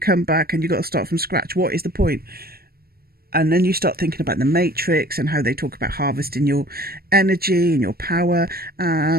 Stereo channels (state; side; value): late; left; 0.44 ms